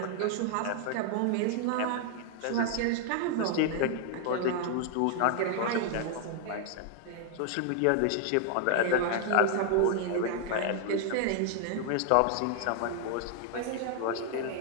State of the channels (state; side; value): different; both; correlation 0.00